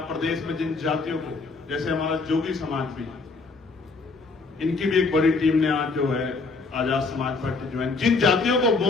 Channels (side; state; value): right; quieter; 4.0 dB